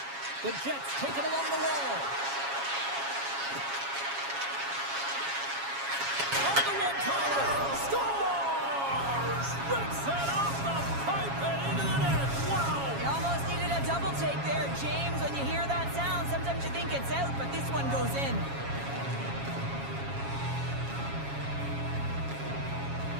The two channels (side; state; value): left; late; 7.3 ms